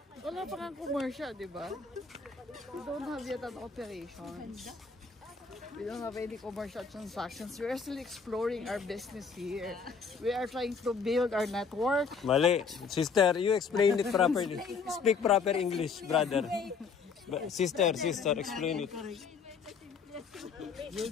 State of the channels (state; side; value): quieter; right; 5.5 dB